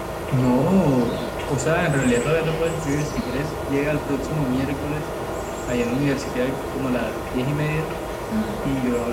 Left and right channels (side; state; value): both; identical; correlation 1.00